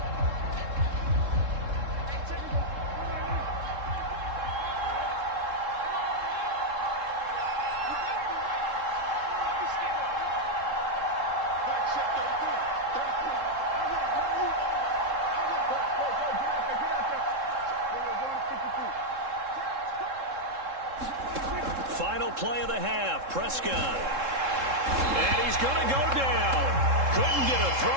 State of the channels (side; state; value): left; late; 3.7 ms